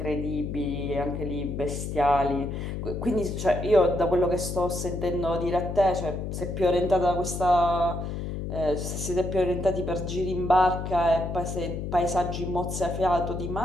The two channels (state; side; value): noise; left; hum, 5 dB below the sound